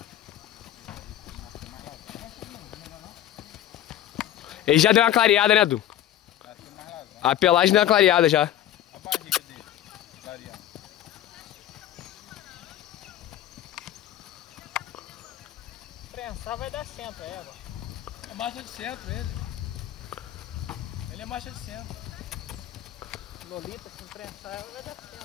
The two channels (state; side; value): quieter; right; 12.1 dB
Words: Ele já deu uma clareada, né, Du? A pelagem deu uma clareada já. A barriga dele, clareando. Prensar vai dar centro, é, égua. É marcha de centro ele. Ele é marcha de centro. Lolita, se prensar, vai dar